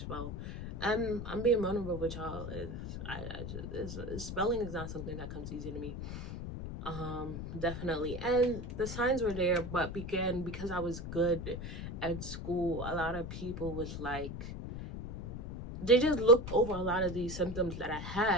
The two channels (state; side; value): noise; left; rumble, 7 dB below the sound